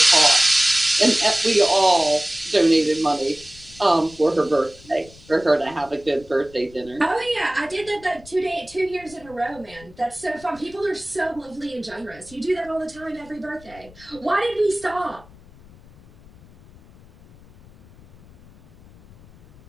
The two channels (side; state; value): left; noise; rumble, 23 dB below the sound